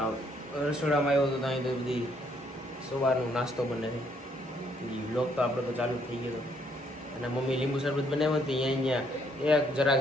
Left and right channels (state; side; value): normal; both; correlation 0.69